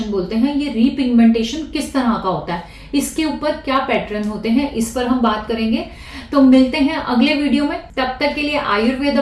बोलते हैं। ये रीपिगमेंटेशन किस तरह का होता है, इसके ऊपर क्या पैटर्न होते हैं, इस पर हम बात करेंगे। तो मिलते हैं अगले वीडियो में। तब तक के लिए आयुर्वेद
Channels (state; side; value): identical; both; correlation 1.00